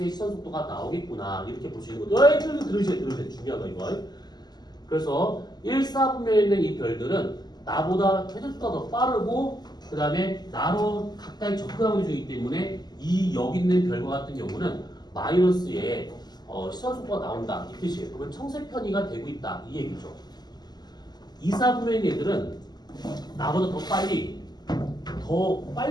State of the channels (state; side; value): late; right; 0.20 ms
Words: 시선 속도가 나오겠구나 이렇게 볼 수 있는 거죠. 들으세요. 중요한 거 이거. 그래서 1, 4분면에 있는 이 별들은 나보다 회전 속도가 더 빠르고 그 다음에 나로 가까이 접근하고 있기 때문에 이 여기 있는 별과 같은 경우는 마이너스의 시선 속도가 나온다 이 뜻이에요. 그러면 청색편이가 되고 있다 이 얘기죠. 2, 4분면의 애들은 나보다 더 빨리